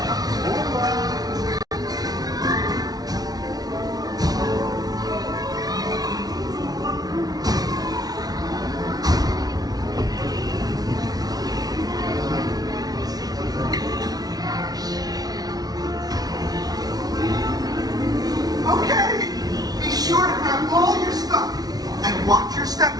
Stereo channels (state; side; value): late; left; 0.19 ms